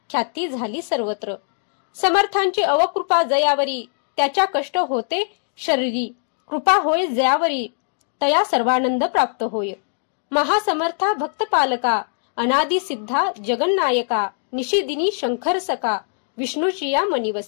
ख्याती झाली सर्वत्र. समर्थांची अवकृपा जयावरी, त्याच्या कष्ट होते शरीरी. कृपा होय जयावरी, तया सर्वानंद प्राप्त होय. महासमर्था भक्त पालका, अनादि सिद्धा जगन्नायका. निशिदिनी शंकर सका, विष्णूची या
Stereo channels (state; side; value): silent; right; digital silence